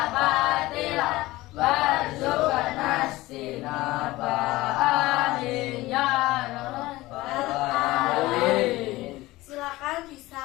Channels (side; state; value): right; quieter; 18.8 dB